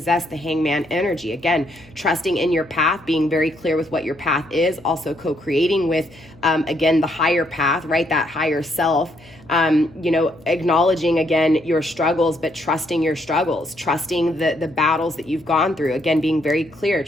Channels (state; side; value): noise; left; hum, 26 dB below the sound